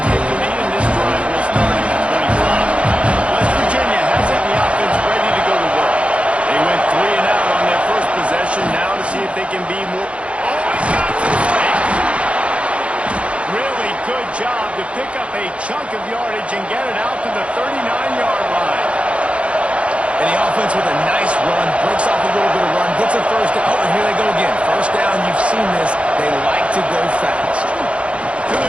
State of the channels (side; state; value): left; late; 0.061 ms